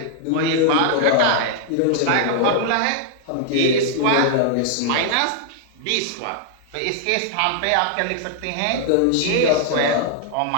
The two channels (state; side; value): different; both; correlation -0.01